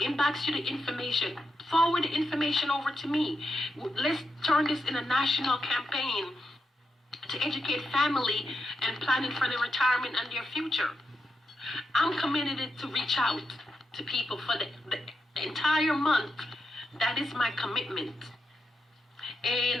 information, forward the information over to me. Let's turn this in a national campaign to educate family and planning for their retirement and their future. I'm committed to reach out to people for the entire month. That is my commitment.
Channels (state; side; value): normal; both; correlation 0.86